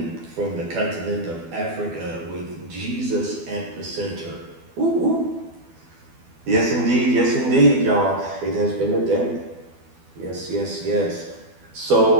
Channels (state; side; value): late; left; 12 ms